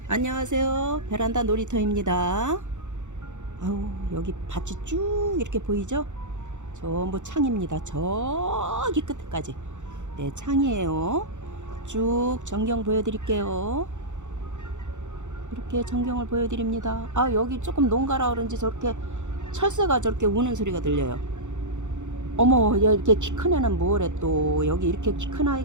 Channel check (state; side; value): late; left; 0.85 ms